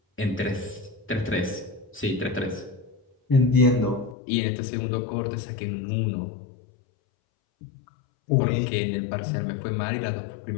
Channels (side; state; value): right; drops out; at 4.2 s